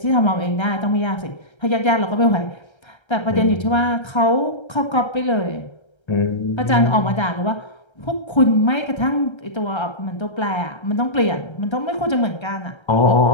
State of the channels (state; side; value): late; right; 1.3 ms